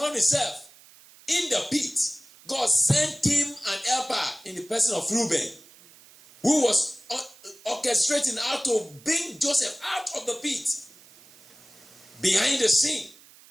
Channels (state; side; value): noise; right; hiss, 24 dB below the sound